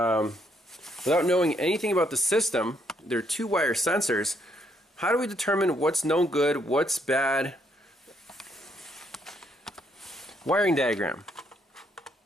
knowing anything about the system, there are two wire sensors. How do we determine what's no good, what's bad? Wiring diagram.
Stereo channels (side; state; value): both; normal; correlation 0.72